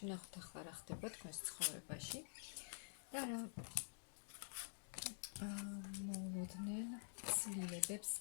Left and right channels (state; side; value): silent; right; digital silence